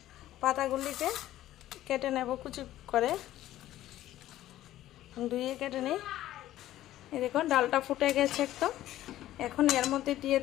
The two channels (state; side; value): quieter; right; 14.0 dB